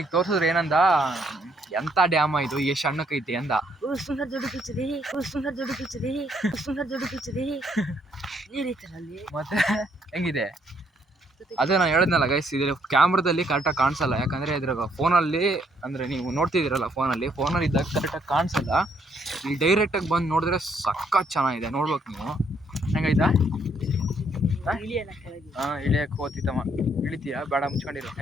ತೋರ್ಸಿದ್ರು, ಏನಂದ, ಎಂತ ಡ್ಯಾಮ ಇದು, ಎಷ್ಟು ಸಣ್ಣಕ್ಕೈತಿ ಅಂದ. ಮತ್ತೆ ಹೆಂಗಿದೆ ಅದೇ ನಾನು ಹೇಳಿದ್ನಲ್ಲ ಗೈಸ್, ಇದ್ರ ಕ್ಯಾಮ್ರಾದಲ್ಲಿ ಕರೆಕ್ಟಾಗಿ ಕಾಣಿಸಲ್ಲ. ಯಾಕಂದರೆ ಇದ್ರಾಗ ಫೋನಲ್ಲಿ ಅಂದರೆ ನೀವು ನೋಡ್ತಿದ್ದೀರಲ್ಲ, ಫೋನಲ್ಲಿ ಇದ್ದಾಗ ಕರೆಕ್ಟಾಗಿ ಕಾಣಿಸಲ್ಲ. ಇಲ್ಲಿ ಡೈರೆಕ್ಟಾಗಿ ಬಂದು ನೋಡಿದ್ರೆ ಸಖತ್ ಚೆನ್ನಾಗಿದೆ, ನೋಡ್ಬೇಕು ನೀವು. ಹೆಂಗೈತಾ? ಹಾಂ, ಇಳಿಯಕ್ಕೆ ಹೋಗ್ತಿತ್ತಮ್ಮ. ಇಳಿತೀಯಾ? ಬೇಡ, ಮುಚ್ಕೊಂಡಿರೋ.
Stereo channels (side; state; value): both; normal; correlation 0.70